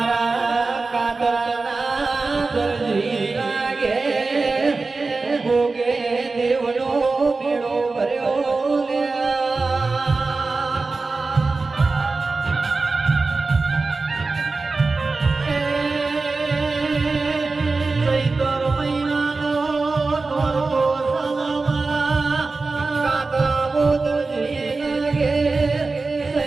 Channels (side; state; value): left; quieter; 3.8 dB